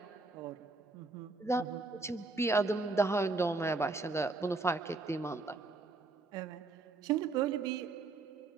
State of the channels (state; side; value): quieter; left; 3.6 dB